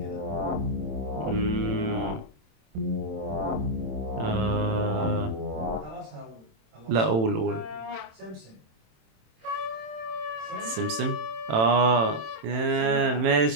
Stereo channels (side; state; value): left; late; 27 ms